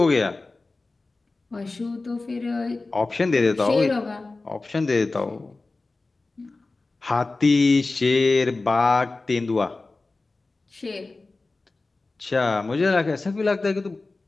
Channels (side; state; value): right; quieter; 3.4 dB